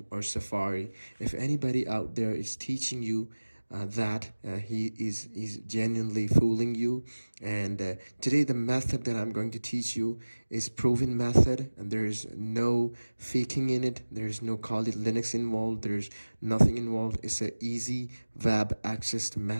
or Safari. If anybody out there is teaching you that he is genuinely fooling you. And today the method that I'm going to teach you is proven method, and there's no faking in it. There's no call it Linux involved. There's nothing involved. It's an easy web accessed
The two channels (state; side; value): inverted; both; correlation -1.00